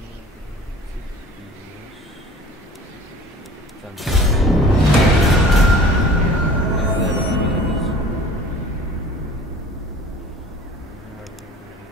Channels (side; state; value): both; normal; correlation 0.46